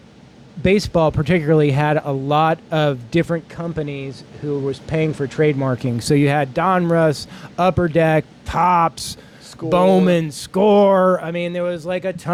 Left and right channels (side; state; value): both; identical; correlation 1.00